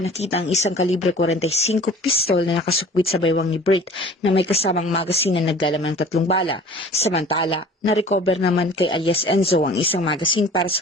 nakita ang isang kalibre 45 pistol na nakasukwit sa baywang ni Bert na may kasamang magazine na naglalaman ng 3 bala. Samantala, na-recover naman kay alias Enzo ang isang magazine para sa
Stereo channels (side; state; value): both; normal; correlation 0.46